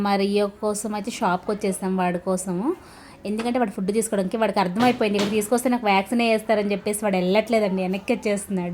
మా Rio కోసం అయితే షాప్కి వచ్చేసాం వాడి కోసము. ఎందుకంటే వాడు ఫుడ్ తీసుకోవడానికి వాడికి అర్థమైపోయింది, ఇక్కడ తీసుకొస్తే నాకు వ్యాక్సిన్ వేస్తారని చెప్పేసి వాడు వెళ్ళట్లేదండి, వెనక్కి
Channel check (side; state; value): both; identical; correlation 1.00